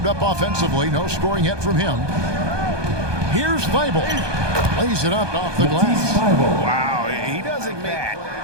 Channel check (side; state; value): left; late; 1.2 ms